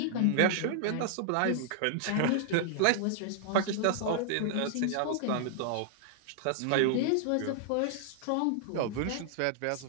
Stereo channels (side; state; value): both; different; correlation -0.01